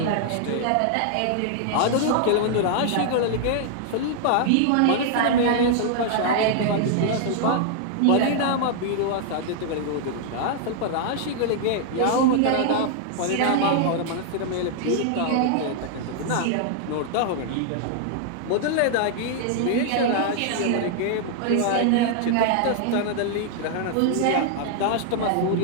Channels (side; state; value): both; different; correlation -0.01